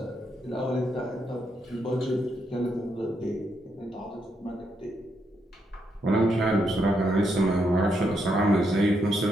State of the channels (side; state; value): both; normal; correlation 0.79